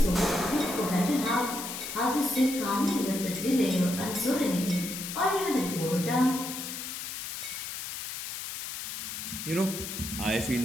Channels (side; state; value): left; noise; hiss, 7 dB below the sound